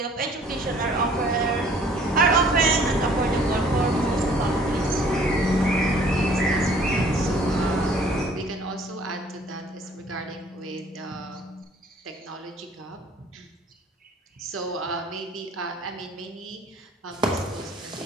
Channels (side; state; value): both; normal; correlation 0.55